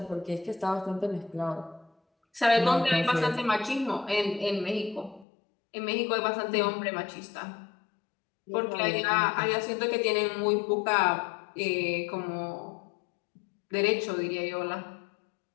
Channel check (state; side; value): drops out; right; at 5.2 s